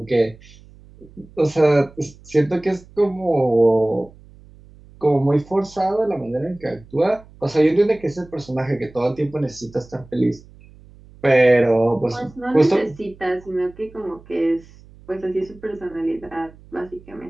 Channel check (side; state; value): right; noise; hum, 23 dB below the sound